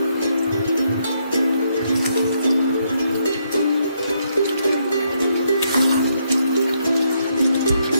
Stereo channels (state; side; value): inverted; both; correlation -0.76